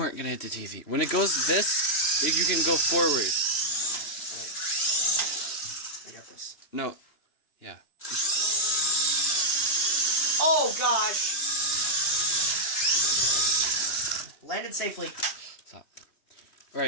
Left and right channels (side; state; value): right; late; 2.9 ms